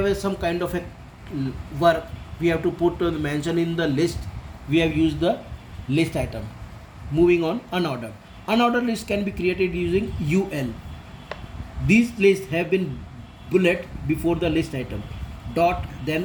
some kind of a work, we have to put mention in the list. We have used the list item. Moving on, unordered list can be created using UL. These lists have been bullet before the list item, dot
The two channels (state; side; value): identical; both; correlation 1.00